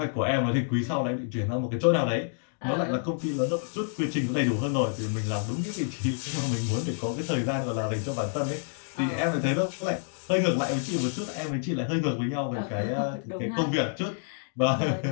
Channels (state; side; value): silent; right; digital silence